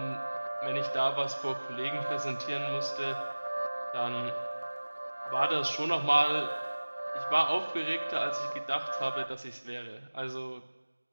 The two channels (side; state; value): both; inverted; correlation -1.00